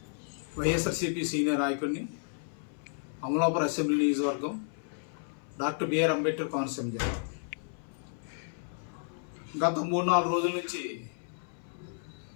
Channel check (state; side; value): silent; right; 56 dB below the other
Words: వైఎస్ఆర్సీపీ సీనియర్ నాయకుడిని, అమలాపురం అసెంబ్లీ నియోజకవర్గం, డాక్టర్ బిఆర్ అంబేద్కర్ కోనసీమ జిల్లా. గత 3-4 రోజుల నుంచి